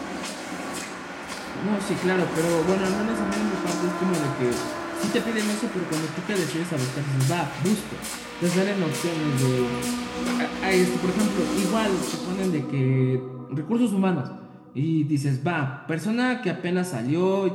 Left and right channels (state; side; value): identical; both; correlation 1.00